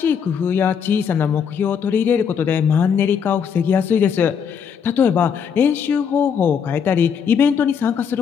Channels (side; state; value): right; quieter; 7.2 dB